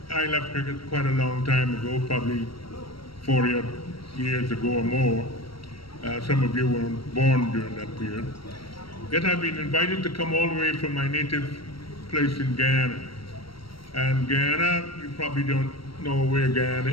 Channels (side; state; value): right; late; 0.75 ms